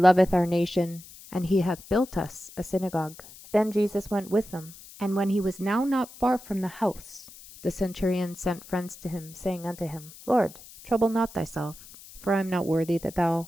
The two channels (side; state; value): left; noise; hiss, 19 dB below the sound